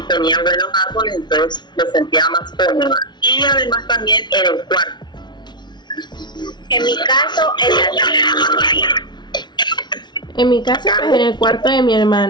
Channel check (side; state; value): right; late; 0.21 ms